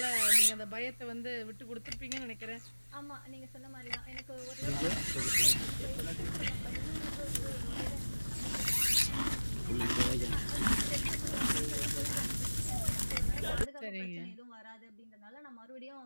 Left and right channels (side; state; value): both; inverted; correlation -1.00